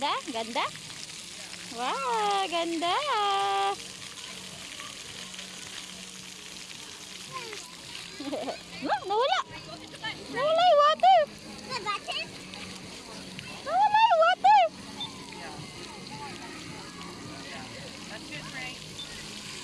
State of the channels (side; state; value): both; identical; correlation 1.00